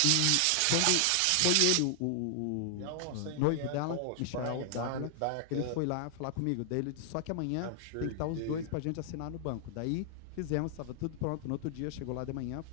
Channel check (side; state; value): both; different; correlation 0.00